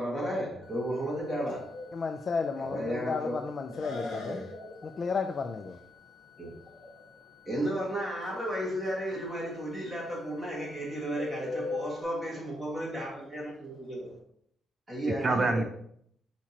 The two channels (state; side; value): normal; both; correlation 0.79